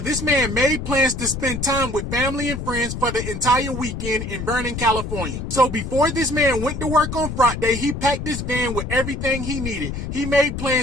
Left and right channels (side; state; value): left; noise; rumble, 5 dB below the sound